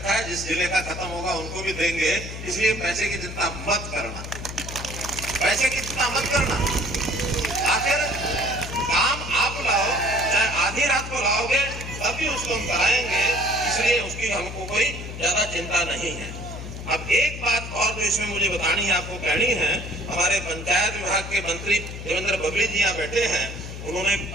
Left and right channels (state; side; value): noise; left; hum, 9 dB below the sound